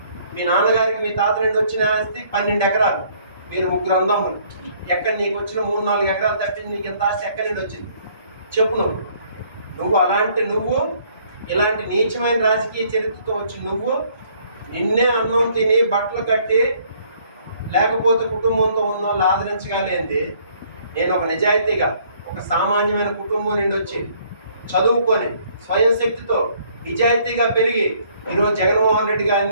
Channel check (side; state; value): both; inverted; correlation -0.62